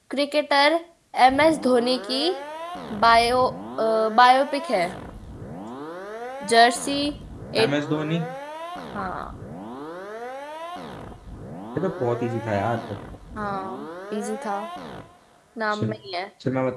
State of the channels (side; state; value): both; identical; correlation 1.00